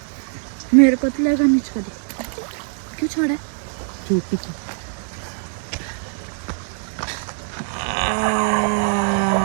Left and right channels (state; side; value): silent; left; digital silence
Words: मेरे को तो लगा नीच कधी. क्यों छोड़ा है? छोटी